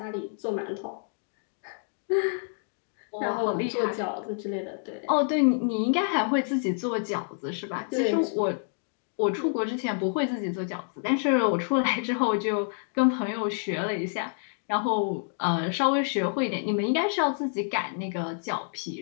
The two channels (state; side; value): silent; right; digital silence